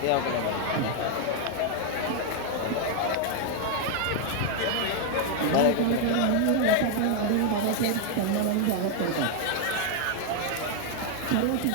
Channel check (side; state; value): both; different; correlation 0.00